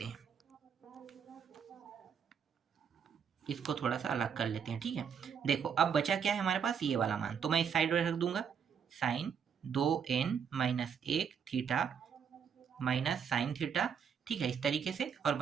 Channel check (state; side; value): quieter; left; 7.2 dB